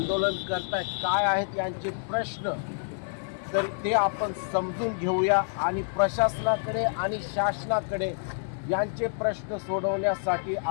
करतायत, काय आहेत यांचे प्रश्न, तर ते आपण समजून घेऊया आणि प्रशासनाकडे आणि शासनाकडे यांचे प्रश्न सोडवण्यासाठी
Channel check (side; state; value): right; silent; 59 dB below the other